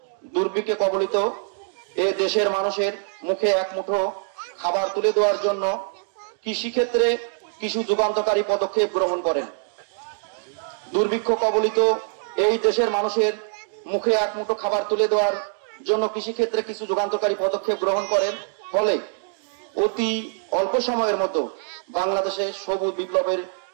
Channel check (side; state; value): left; silent; digital silence